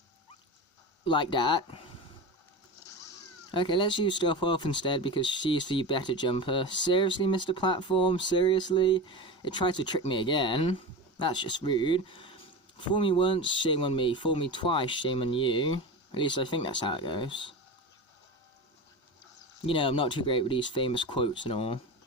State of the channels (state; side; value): normal; both; correlation 0.26